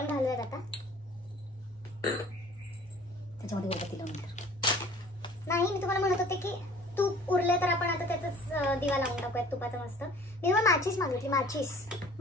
घालूयात आता. त्याच्यामध्ये नाही, मी तुम्हाला म्हणत होते की तूप उरले तर आपण आता त्याचाच दिवा लावून टाकूयात तुपाचा मस्त. मी तुम्हाला माचीस मागितली,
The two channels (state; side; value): normal; both; correlation 0.50